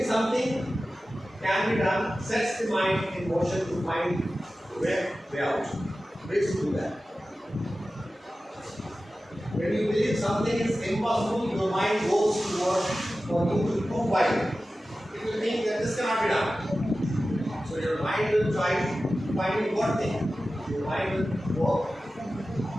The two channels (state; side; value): normal; both; correlation 0.95